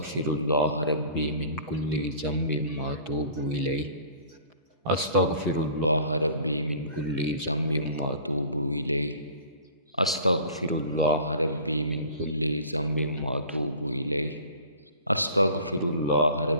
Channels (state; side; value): inverted; both; correlation -0.46